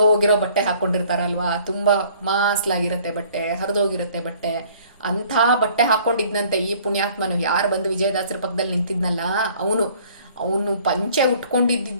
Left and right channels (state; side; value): inverted; both; correlation -0.55